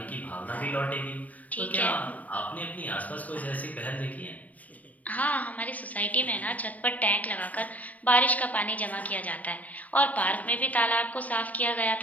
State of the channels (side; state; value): right; late; 0.072 ms